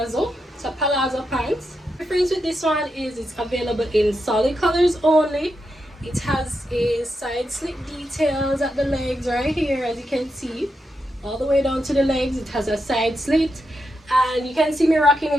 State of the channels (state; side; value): normal; both; correlation 0.85